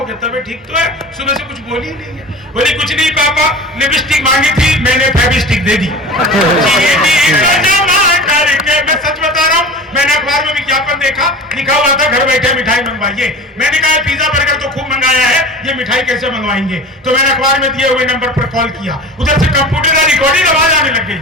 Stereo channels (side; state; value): both; normal; correlation 0.35